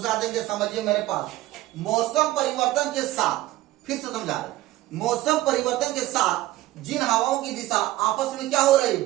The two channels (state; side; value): quieter; left; 16.3 dB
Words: देंगे, समझिए मेरे पास। मौसम परिवर्तन के साथ, फिर से समझा रहे, मौसम परिवर्तन के साथ जिन हवाओं की दिशा आपस में क्या हो रही